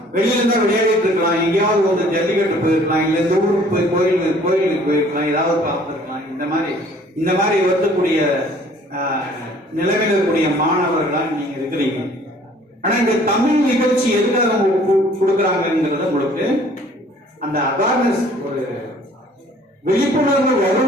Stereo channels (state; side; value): normal; both; correlation 0.55